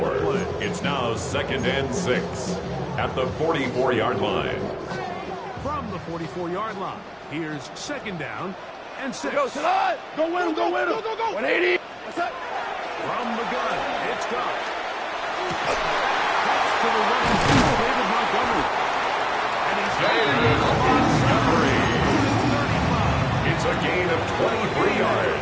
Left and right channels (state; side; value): identical; both; correlation 1.00